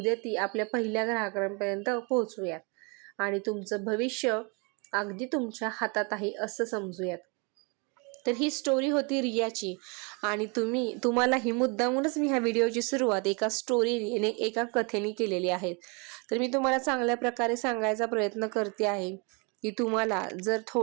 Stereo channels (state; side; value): quieter; left; 32.5 dB